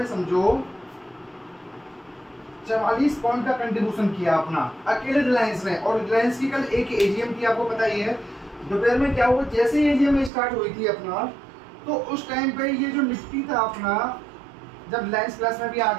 समझो 44 पॉइंट का कंट्रीब्यूशन किया अपना, अकेले रिलायंस ने। और रिलायंस की कल एक एजीएम थी, आपको पता ही है। दोपहर में क्या हुआ, जैसे ही एजीएम स्टार्ट हुई थी अपना, तो उस टाइम पे ये जो निफ्टी था अपना, जब रिलायंस प्लस में भी आ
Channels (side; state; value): left; drops out; at 10.3 s